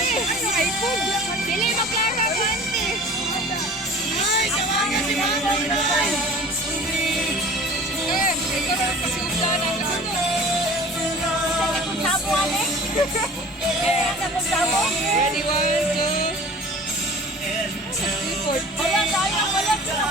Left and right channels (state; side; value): normal; both; correlation 0.43